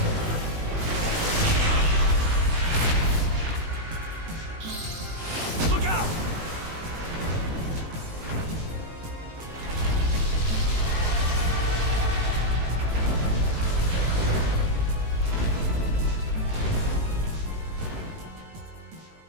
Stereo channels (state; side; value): late; left; 18 ms